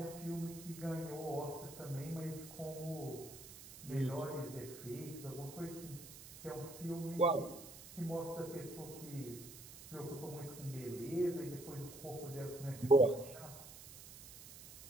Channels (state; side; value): noise; right; hiss, 15 dB below the sound